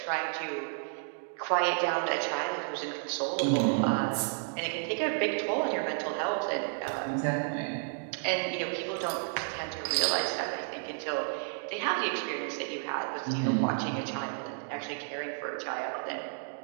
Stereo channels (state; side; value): silent; left; 57 dB below the other